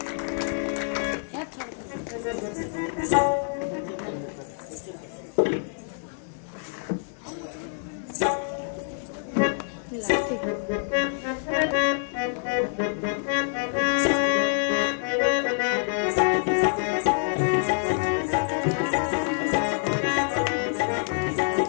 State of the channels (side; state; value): right; silent; 61 dB below the other